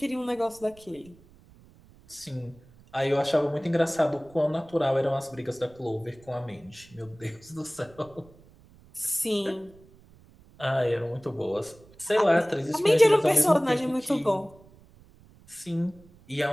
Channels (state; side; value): noise; right; rumble, 26 dB below the sound